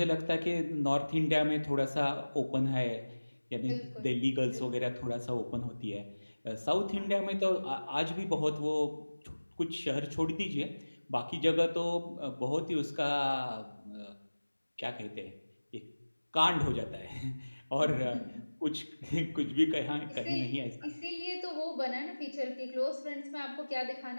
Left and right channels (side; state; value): both; inverted; correlation -1.00